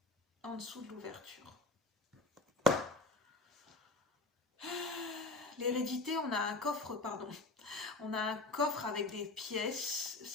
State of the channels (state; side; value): quieter; right; 3.5 dB